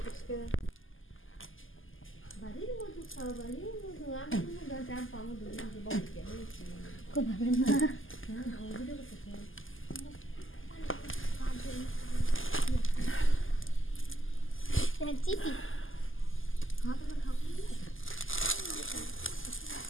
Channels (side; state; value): right; late; 0.58 ms